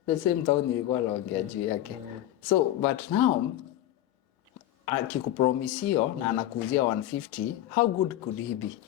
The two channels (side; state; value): right; quieter; 13.3 dB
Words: the same town nilikuwa naongea juu yake. So but now akikupromisio na anakuuzia 150, how good could he be?